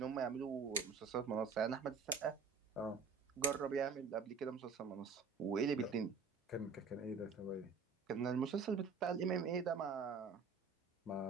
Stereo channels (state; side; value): quieter; left; 5.2 dB